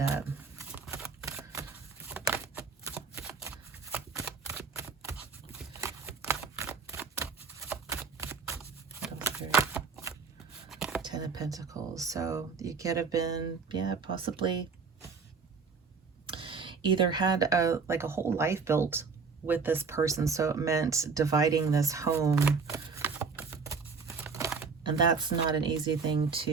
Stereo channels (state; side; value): quieter; left; 5.2 dB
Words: up. Pentacles. So you could have been, yeah, possibly either had a whole life built with this person, so it meant dividing this home, and that's not an easy thing